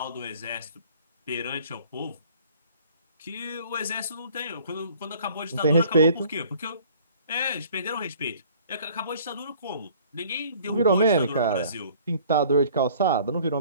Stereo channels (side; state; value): both; inverted; correlation -0.54